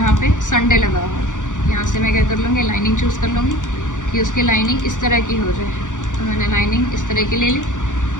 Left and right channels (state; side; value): late; right; 0.87 ms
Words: पे संडे लगा हो। यहाँ से मैं क्या कर लूँगी, लाइनिंग चूज़ कर लूँगी कि उसकी लाइनिंग इस तरह की हो जाए। तो मैंने लाइनिंग इस तरह की ले ली।